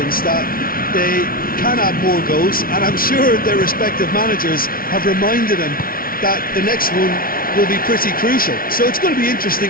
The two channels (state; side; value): late; right; 0.43 ms